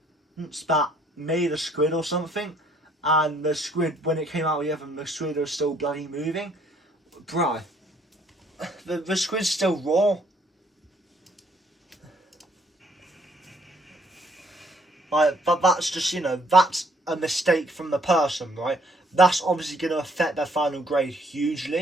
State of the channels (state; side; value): normal; both; correlation 0.65